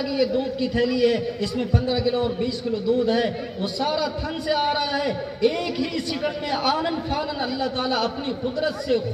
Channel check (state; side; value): identical; both; correlation 1.00